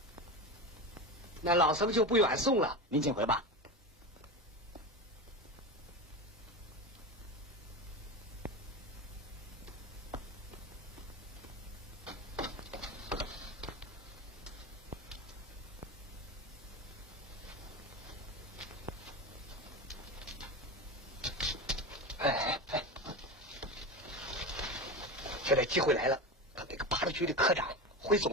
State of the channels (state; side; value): normal; both; correlation 0.23